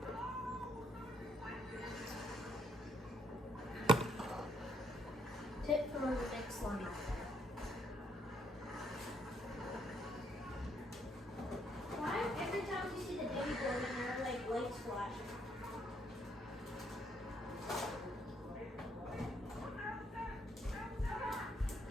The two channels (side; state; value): both; normal; correlation 0.71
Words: Tip for the next slime. Why every time you see the baby board and there are like lights flashing?